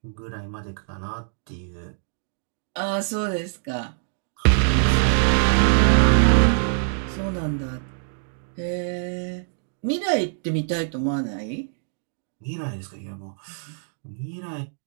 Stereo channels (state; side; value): silent; left; digital silence